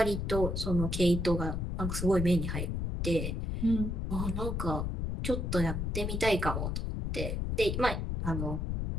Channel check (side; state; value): left; noise; rumble, 1 dB below the sound